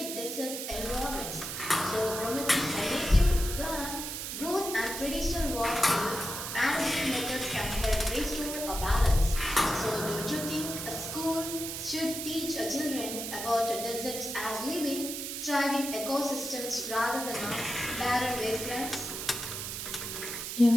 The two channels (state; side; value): noise; right; hiss, 5 dB below the sound